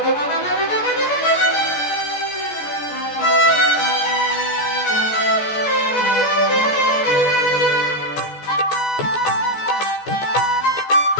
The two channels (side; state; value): right; late; 14 ms